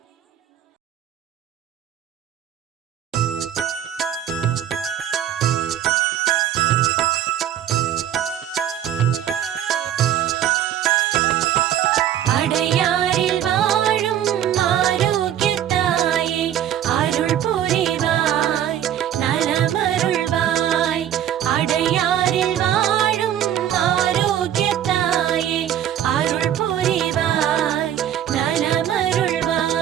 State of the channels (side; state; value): left; quieter; 10.7 dB